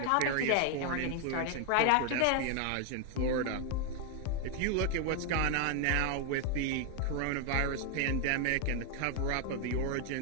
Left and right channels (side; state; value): both; different; correlation 0.00